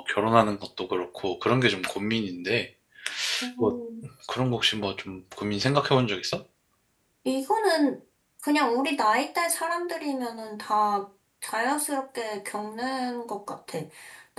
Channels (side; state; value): both; identical; correlation 1.00